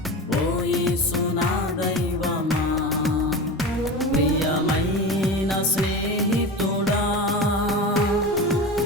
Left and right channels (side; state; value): both; normal; correlation 0.27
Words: ఓ యేసు నా దైవమా, ప్రియమైన స్నేహితుడా,